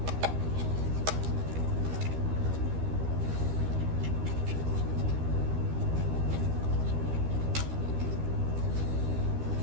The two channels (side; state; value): left; late; 13 ms